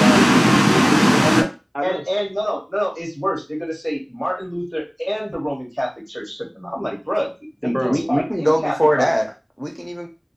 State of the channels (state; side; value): identical; both; correlation 1.00